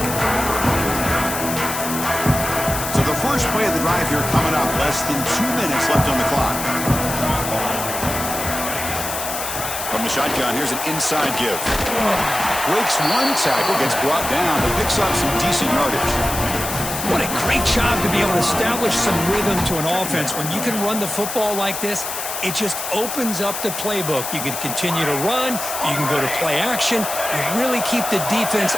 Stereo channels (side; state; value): left; noise; hiss, 5 dB below the sound